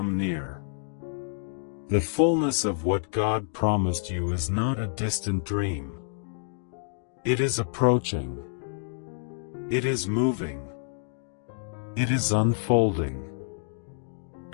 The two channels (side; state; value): right; silent; digital silence